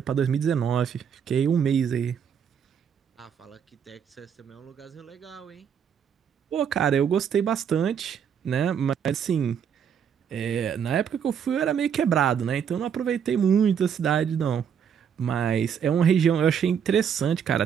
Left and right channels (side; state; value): left; quieter; 7.8 dB